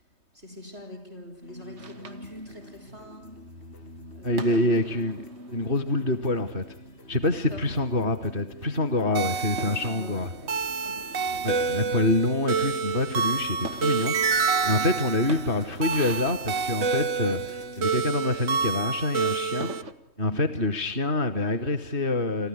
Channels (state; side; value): late; left; 3.2 ms